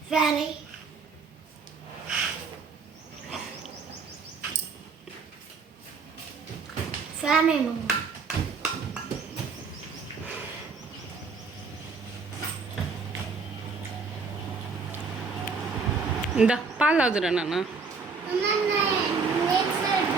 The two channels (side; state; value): left; quieter; 4.7 dB